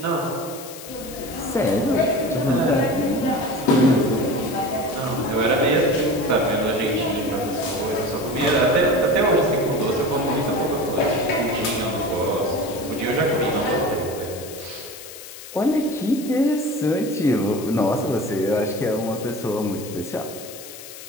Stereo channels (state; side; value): noise; left; hiss, 14 dB below the sound